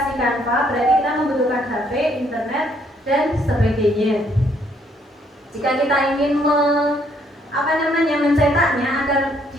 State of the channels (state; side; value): normal; both; correlation 0.68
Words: Canva, berarti kita membutuhkan HP, internet, dan sebagainya. Jika kita ingin mencetaknya agar